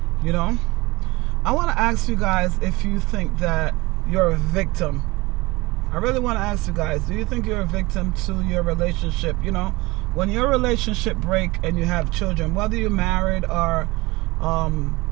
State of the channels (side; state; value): left; quieter; 22.3 dB